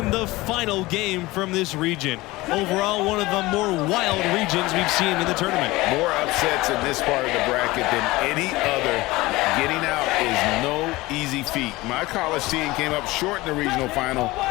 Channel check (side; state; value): right; quieter; 20.2 dB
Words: the final game from this region. Overall, one of the more wild regions we've seen in the tournament. More upsets in this part of the bracket than any other. Getting out is no easy feat. My college team came up short in the regional final